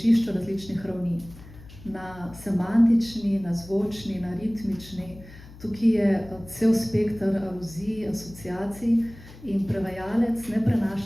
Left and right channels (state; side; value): noise; left; hum, 19 dB below the sound